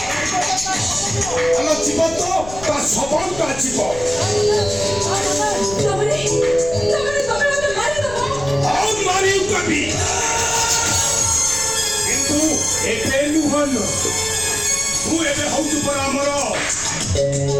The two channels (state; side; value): noise; left; rumble, 13 dB below the sound